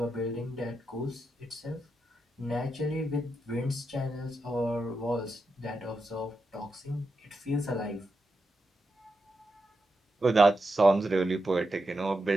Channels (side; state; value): both; normal; correlation 0.87